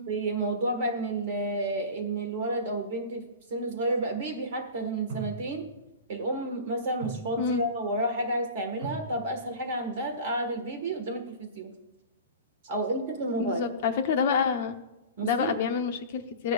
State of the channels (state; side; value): inverted; both; correlation -0.33